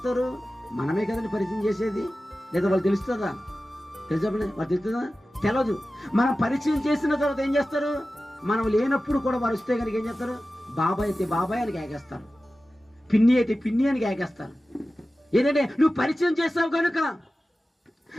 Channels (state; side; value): normal; both; correlation 0.95